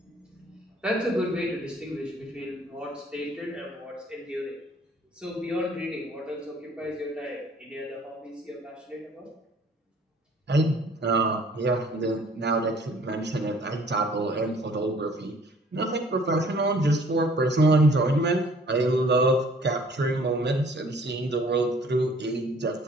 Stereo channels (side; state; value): both; normal; correlation 0.55